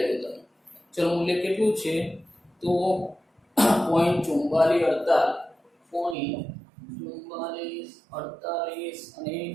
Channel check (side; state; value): left; drops out; at 6.2 s